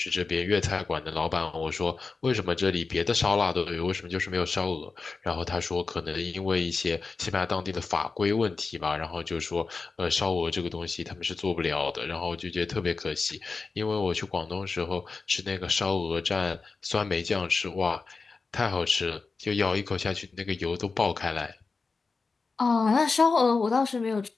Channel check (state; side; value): quieter; right; 4.3 dB